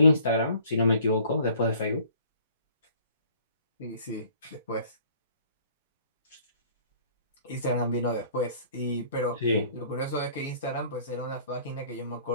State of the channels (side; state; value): both; inverted; correlation -0.55